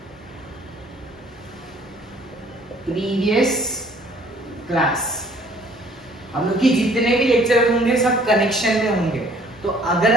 प्रीवियस क्लास। हम लोग की जितने भी लेक्चर होंगे सब कनेक्शन में होंगे, तो अगर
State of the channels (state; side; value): normal; both; correlation 0.58